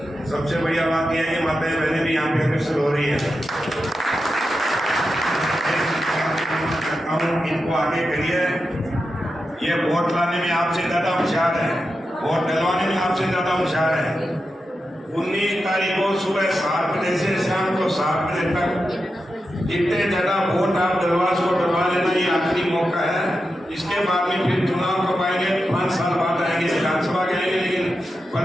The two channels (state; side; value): normal; both; correlation 0.89